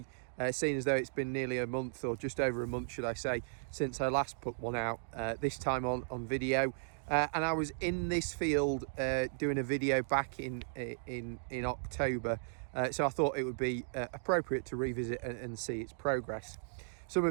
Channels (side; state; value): left; silent; digital silence